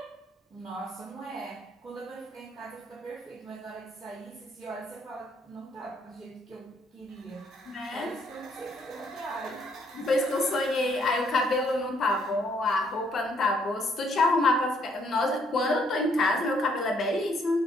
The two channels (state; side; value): normal; both; correlation 0.68